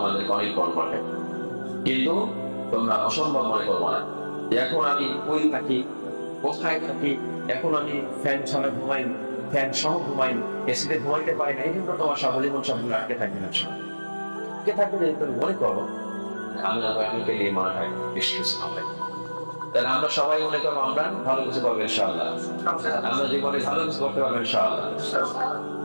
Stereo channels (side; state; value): both; inverted; correlation -1.00